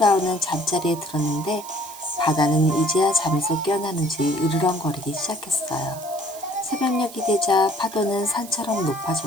잠자리에 들었는데 바다는 이제야 잠에서 깨어나는지 으르렁거리기 시작했어요. 새벽녘이 되자 파도는 산처럼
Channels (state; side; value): noise; right; hiss, 16 dB below the sound